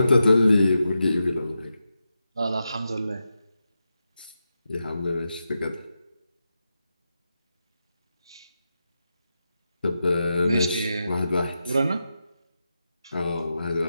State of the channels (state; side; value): inverted; both; correlation -0.89